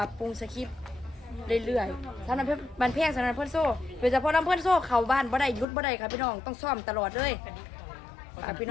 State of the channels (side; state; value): right; drops out; at 5.7 s